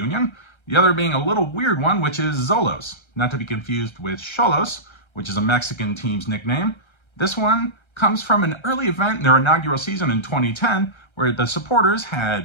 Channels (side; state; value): right; late; 1.3 ms